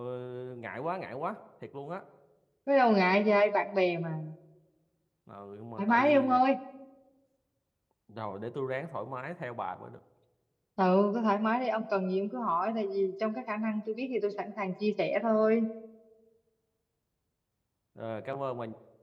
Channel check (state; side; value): identical; both; correlation 1.00